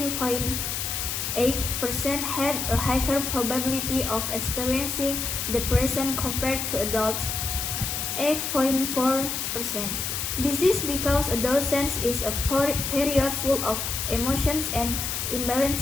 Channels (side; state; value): left; noise; hiss, 2 dB below the sound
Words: had a higher probability of experiencing depression compared to adults 8.4%. This is because adolescence is a period full of emotions and